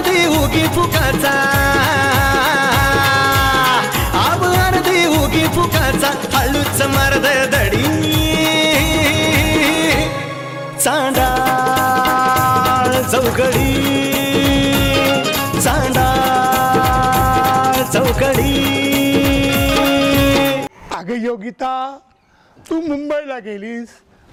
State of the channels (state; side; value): identical; both; correlation 1.00